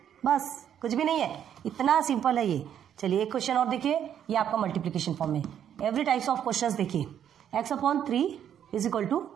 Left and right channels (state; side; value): quieter; left; 9.5 dB